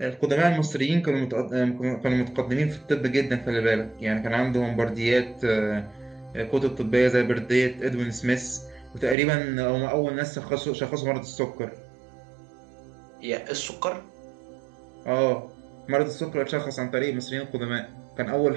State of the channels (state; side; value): drops out; left; at 9.2 s